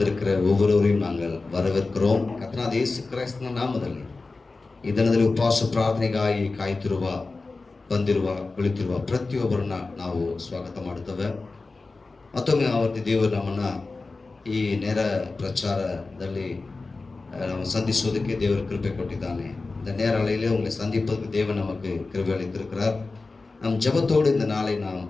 ஒவ்வொருவரையும் நாங்கள் வரவேற்கிறோம். ಕರ್ತನಾದ ಯೇಸು ಕ್ರಿಸ್ತನ ನಾಮದಲ್ಲಿ ಈ ದಿನದಲ್ಲಿ ಉಪವಾಸ ಪ್ರಾರ್ಥನೆಗಾಗಿ ಕಾಯ್ತಿರುವ ಬಂದಿರುವ ಕುಳಿತಿರುವ ಪ್ರತಿಯೊಬ್ಬರನ್ನ ನಾವು ಸ್ವಾಗತ ಮಾಡುತ್ತೇವೆ. ಮತ್ತೊಮ್ಮೆ ಆವರ್ತಿ ದೇವರು ನಮ್ಮನ್ನ ಈ ನೇರ ಪ್ರಚಾರದಲ್ಲಿ சந்திப்பதற்கு தேவர் கிருபை கொட்டித்தானே. இந்த நேர அலையிலே உங்களை சந்திப்பதற்கு தேவன் நமக்கு கிருபை அளித்திருக்கிறார். நம் ஜெபத்தோடு இந்த நாளை நாம்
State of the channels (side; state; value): right; quieter; 3.7 dB